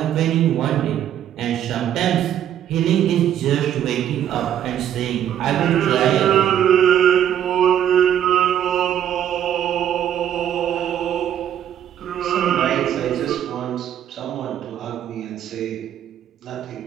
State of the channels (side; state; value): left; quieter; 10.4 dB